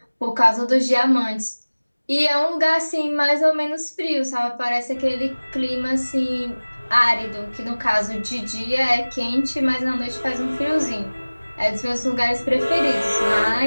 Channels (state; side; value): inverted; both; correlation -1.00